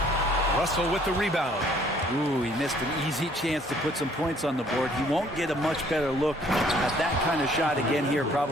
Russell with the rebound. Ooh, he missed an easy chance to put some points on the board. He won't get a much better look at that kind of shot again here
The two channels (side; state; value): both; normal; correlation 0.60